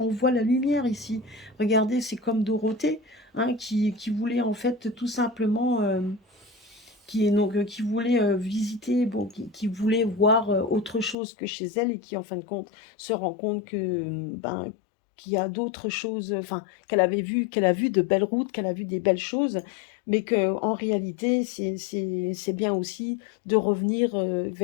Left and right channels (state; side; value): drops out; right; at 11.2 s